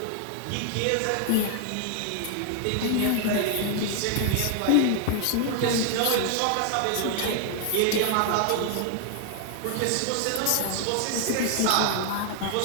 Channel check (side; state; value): both; different; correlation 0.00